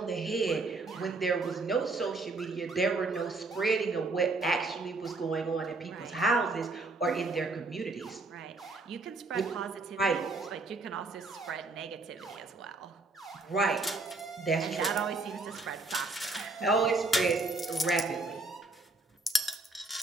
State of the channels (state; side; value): quieter; left; 3.4 dB